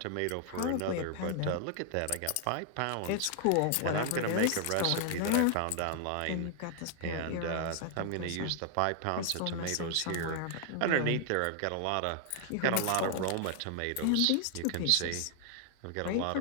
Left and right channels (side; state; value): both; different; correlation 0.00